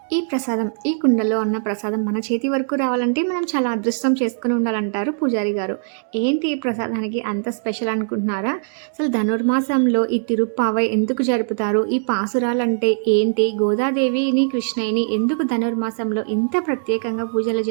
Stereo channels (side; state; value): left; silent; digital silence